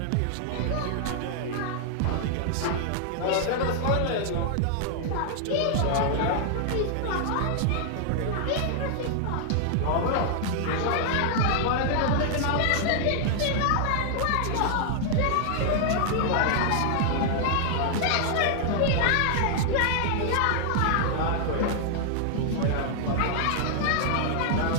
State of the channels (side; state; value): both; different; correlation 0.00